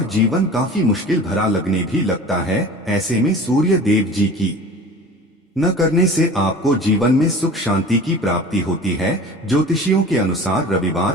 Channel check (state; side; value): normal; both; correlation 0.40